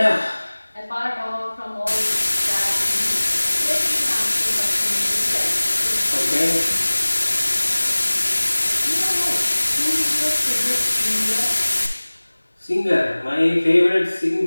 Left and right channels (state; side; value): inverted; both; correlation -1.00